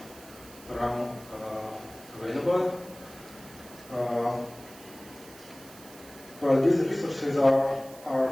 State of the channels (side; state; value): right; noise; hiss, 19 dB below the sound